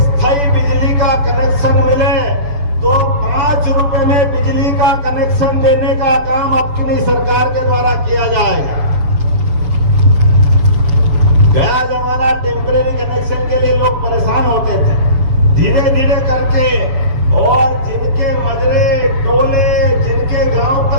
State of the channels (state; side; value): late; left; 7.0 ms